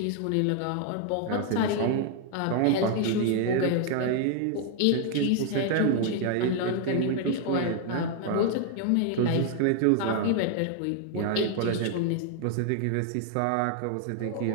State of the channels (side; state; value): both; different; correlation 0.00